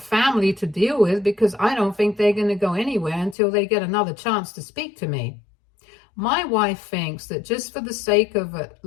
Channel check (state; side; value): drops out; right; at 3.4 s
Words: to deal with because I don't think they're going to go anywhere until they get another chance to speak to me. My wife thinks that just for the sake of at